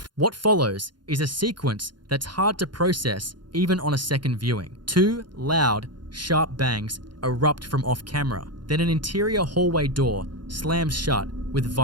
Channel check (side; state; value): left; late; 0.71 ms